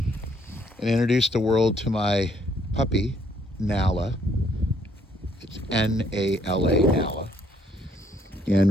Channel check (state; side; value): normal; both; correlation 0.68